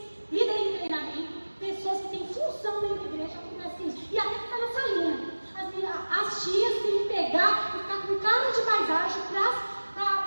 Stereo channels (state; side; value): inverted; both; correlation -1.00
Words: em treinamento, pessoas que têm função dentro da igreja, acontece isso. E até ficar na salinha. As tias têm que pegar e ficar com cara de paisagem